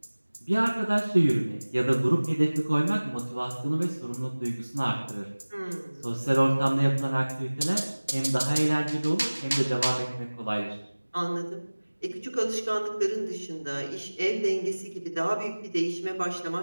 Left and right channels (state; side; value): inverted; both; correlation -1.00